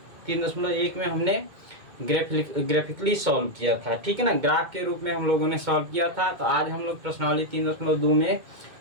में हमने ग्राफिकली सॉल्व किया था। ठीक है ना, ग्राफ के रूप में हम लोगों ने सॉल्व किया था। तो आज हम लोग प्रश्नावली 3.2 में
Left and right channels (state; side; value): late; left; 2.1 ms